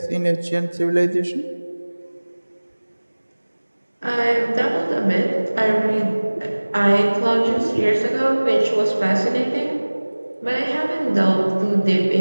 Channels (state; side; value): inverted; both; correlation -1.00